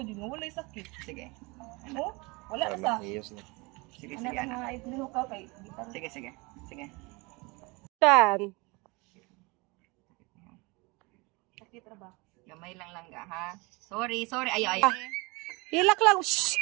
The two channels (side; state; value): left; quieter; 26.3 dB